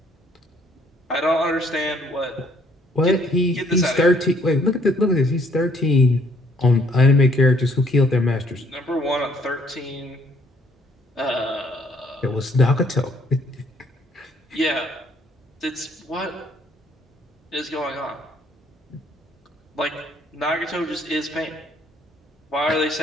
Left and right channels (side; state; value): both; normal; correlation 0.64